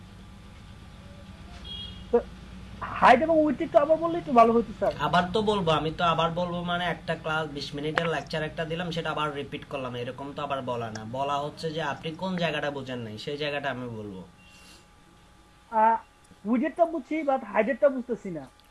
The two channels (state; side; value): identical; both; correlation 1.00